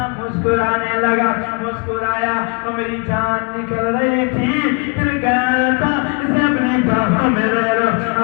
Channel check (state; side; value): quieter; right; 32.7 dB